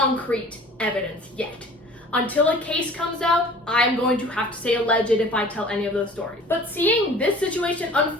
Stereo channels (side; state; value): both; normal; correlation 0.47